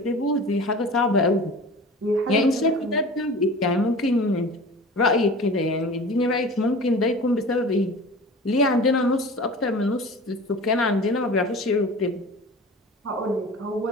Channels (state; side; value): normal; both; correlation 0.38